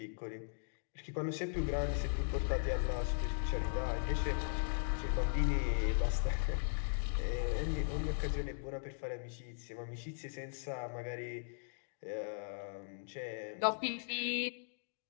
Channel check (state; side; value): silent; right; digital silence